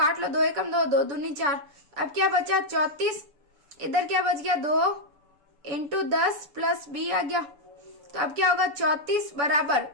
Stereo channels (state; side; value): late; left; 7.0 ms